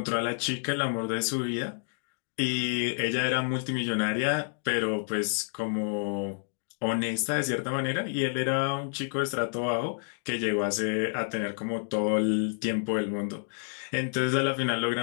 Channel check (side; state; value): right; silent; digital silence